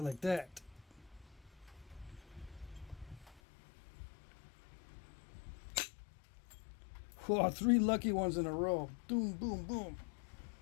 like that. Whoa, 3 lucky ones in a row. Boom, boom, boom.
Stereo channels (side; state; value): right; drops out; at 3.4 s